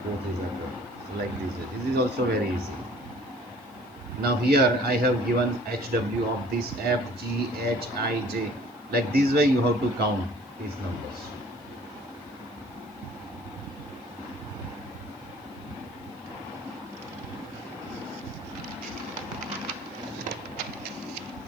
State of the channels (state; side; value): noise; right; hiss, 30 dB below the sound